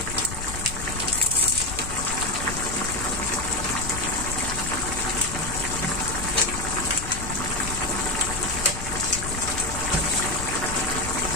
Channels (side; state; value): left; noise; rumble, 8 dB below the sound